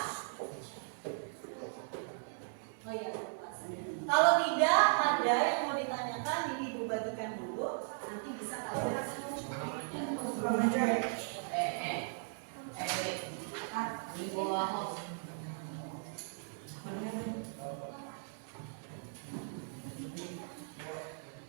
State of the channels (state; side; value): silent; left; 53 dB below the other